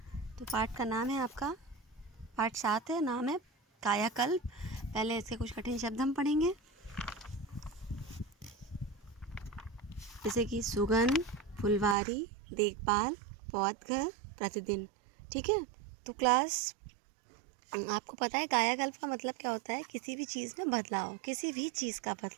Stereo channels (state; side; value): drops out; left; at 12.0 s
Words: तो पाठ का नाम है आपका, पाठ 7 है, नाम है कायाकल्प। पहले इसके कुछ कठिन शब्द हम पढ़ेंगे, जैसे कि सुगंध, फुलवारी, देखभाल, पौधघर, प्रतिदिन। ठीक है, तो क्लास आपको पता है कायाकल्प का मतलब क्या होता है? किसी भी चीज़ में बदलाव, किसी भी चीज़ का